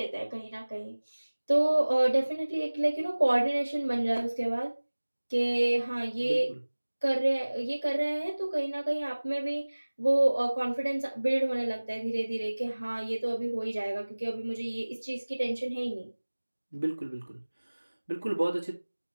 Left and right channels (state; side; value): inverted; both; correlation -1.00